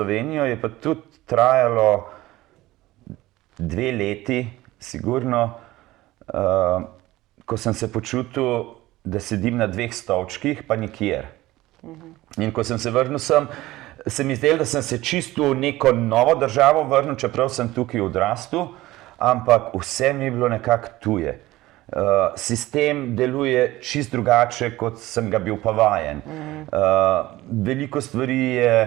je pa tudi trajalo 2 leti, sigurno, ko sem se počutil, da sedim na 2 stolčkih, pa nikjer. In ko sem se vrnil sem, se mi zdelo, da sem se čisto v neko novo državo vrnil, čeprav sem tukaj odrastel, ampak vse mi je bilo nekako tuje. Sistem deluje čisto drugače, kot sem ga bil pa vajen. Veliko stvari je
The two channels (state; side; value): quieter; left; 17.5 dB